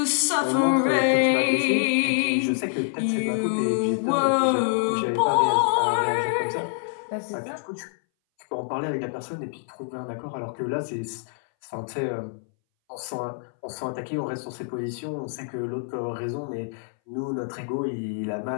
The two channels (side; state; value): right; silent; 60 dB below the other